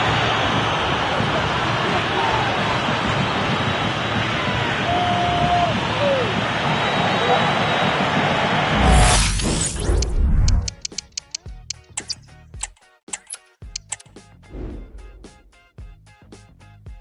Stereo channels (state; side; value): identical; both; correlation 1.00